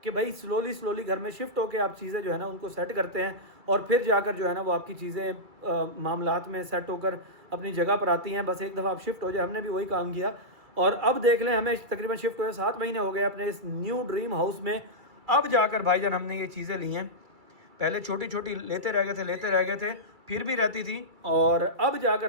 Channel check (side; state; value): left; late; 2.3 ms